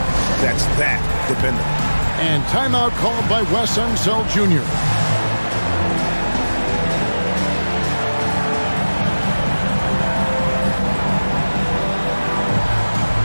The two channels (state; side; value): inverted; both; correlation -1.00